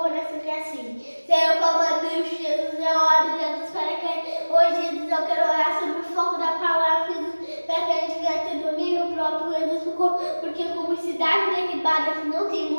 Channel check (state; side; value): inverted; both; correlation -1.00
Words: oração que é assim. Senhor, como Deus, Jesus, eu oro, Jesus, para que hoje, Jesus, eu quero orar sobre o foco da palavra, Jesus, para que a gente venha ter domínio próprio, Jesus, porque como cidade derribada que não tem